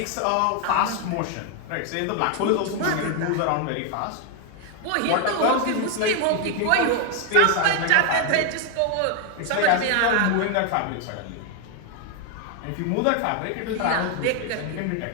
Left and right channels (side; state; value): both; different; correlation 0.01